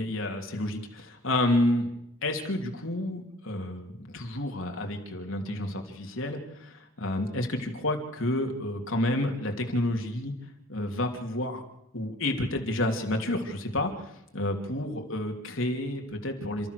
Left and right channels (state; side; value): normal; both; correlation 0.49